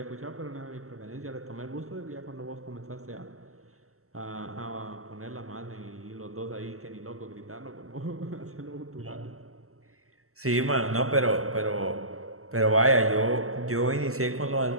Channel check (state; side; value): late; left; 0.63 ms